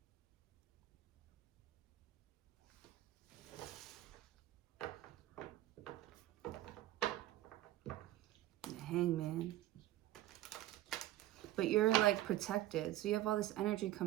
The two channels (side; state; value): left; quieter; 14.9 dB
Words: The Hangman. But you're like protected. So you have all this energy